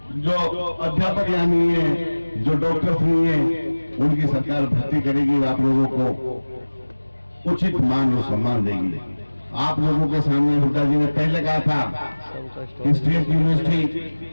जो अध्यापक यहाँ नहीं है, जो डॉक्टर नहीं है, उनकी सरकार भर्ती करेगी, आप लोगों को उचित मान और सम्मान देगी। आप लोगों के सामने हुड्डा जी ने पहले कहा था कि स्टेट यूनिवर्सिटी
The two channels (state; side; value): inverted; both; correlation -1.00